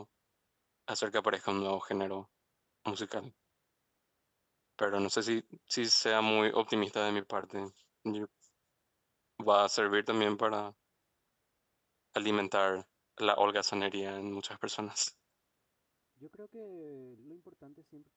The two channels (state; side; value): identical; both; correlation 1.00